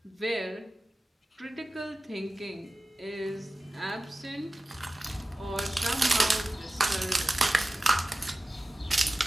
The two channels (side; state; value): both; normal; correlation 0.96